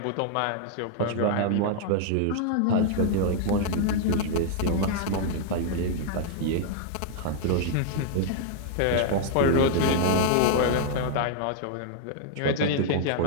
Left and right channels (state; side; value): different; both; correlation -0.01